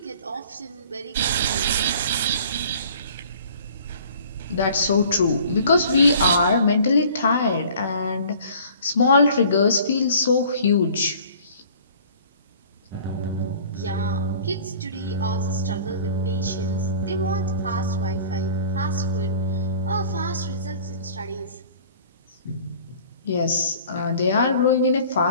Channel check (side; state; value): both; inverted; correlation -0.49